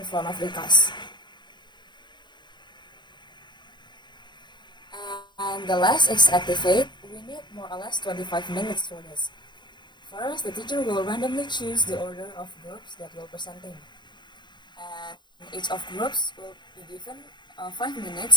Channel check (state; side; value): late; right; 0.22 ms